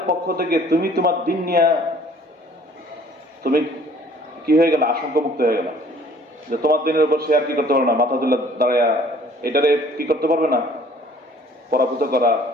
পক্ষ থেকে তুমি তোমার দিন নিয়ে তুমি কি হয়ে গেল? আশঙ্কামুক্ত হয়ে গেল যে তোমার দিনের উপর সে আর কি করতে পারবে না, মাথা তুলে দাঁড়ায়া এটারে কি করতে পারবে না, পরাভূত করা,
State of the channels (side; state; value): both; normal; correlation 0.55